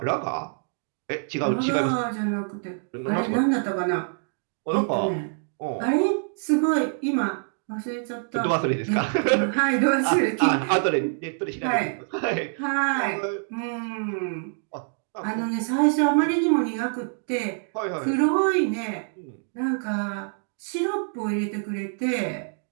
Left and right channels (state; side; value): silent; left; 61 dB below the other